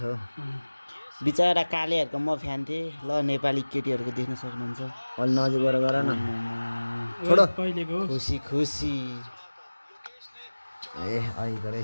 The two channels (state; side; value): inverted; both; correlation -1.00